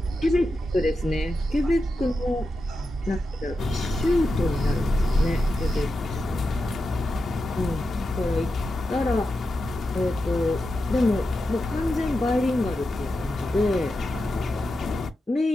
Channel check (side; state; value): both; normal; correlation 0.89